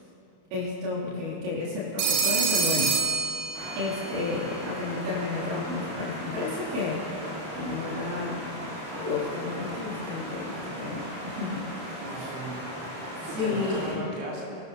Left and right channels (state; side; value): late; left; 31 ms